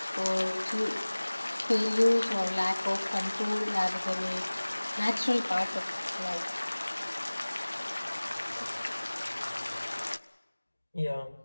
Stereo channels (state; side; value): inverted; both; correlation -1.00